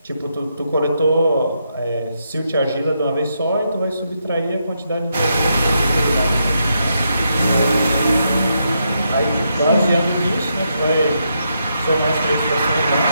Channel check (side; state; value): both; inverted; correlation -0.81